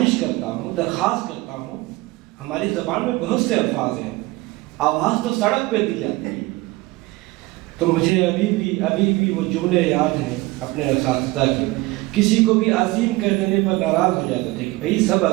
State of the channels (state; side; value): quieter; left; 20.9 dB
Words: کرتا ہوں، درخواست کرتا ہوں۔ ہماری زبان میں بہت سے الفاظ ہیں، آواز تو سڑک پہ دی جاتی ہے۔ تو مجھے ابھی بھی وہ جملے یاد ہیں اپنے اساتذہ کے، کسی کو بھی عظیم کہہ دینے پر ناراض ہو جاتے تھے کہ بھئی سب